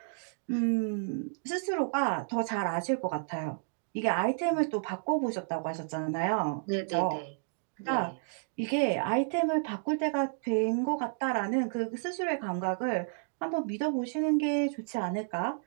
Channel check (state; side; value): silent; left; digital silence